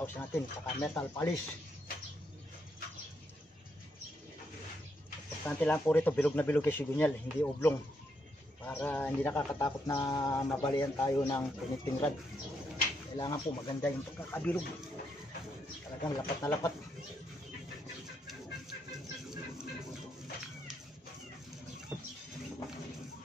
1,000 natin, saka metal polish. Importante lang po rito, bilog na bilog yung sigunyal, hindi oblong, para hindi nakakatakot na mabalian tayo ng connecting rod. Kailangan po maganda yung pagkakabilog, talagang lapat na lapat.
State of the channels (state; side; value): normal; both; correlation 0.78